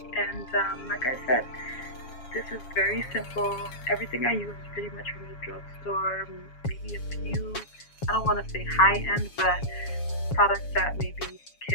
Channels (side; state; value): right; late; 7.2 ms